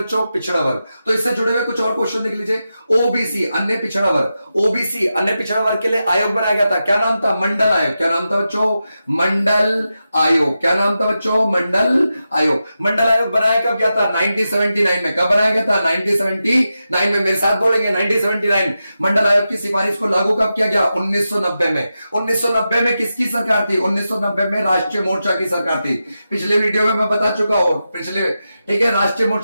बच्चों, पिछड़ा वर्ग। तो इससे जुड़े हुए कुछ और क्वेश्चन देख लीजिए। ओबीसी, अन्य पिछड़ा वर्ग, ओबीसी अन्य पिछड़ा वर्ग के लिए आयोग बनाया गया था। क्या नाम था, मंडल आयोग। क्या नाम था बच्चों, मंडल आयोग। क्या नाम था बच्चों, मंडल आयोग। मंडल आयोग बनाया कब गया था, 1979 में। कब बनाया गया था, 1979 में। मेरे साथ बोलेंगे 1979। मंडल आयोग की सिफारिश को लागू कब किया गया, 1990 में। 1990 में किसकी सरकार थी, 1990 में राष्ट्रीय मोर्चा की सरकार थी। पिछले वीडियो में मैं बता चुका हूं, पिछले, ठीक है, राष्ट्रीय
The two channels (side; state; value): both; inverted; correlation -0.90